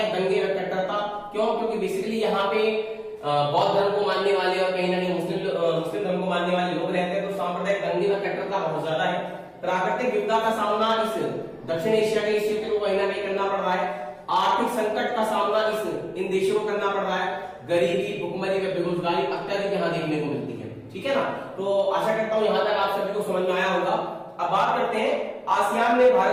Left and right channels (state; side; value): identical; both; correlation 1.00